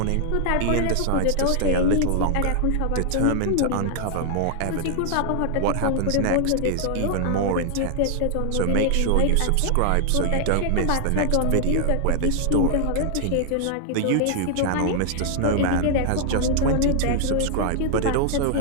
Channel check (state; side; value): different; both; correlation 0.00